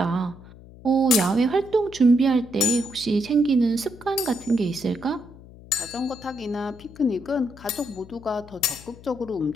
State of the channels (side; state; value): left; noise; hum, 20 dB below the sound